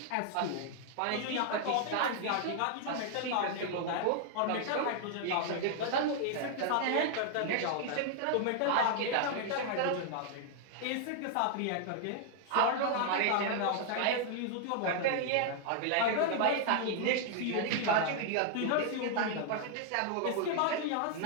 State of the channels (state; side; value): different; both; correlation 0.00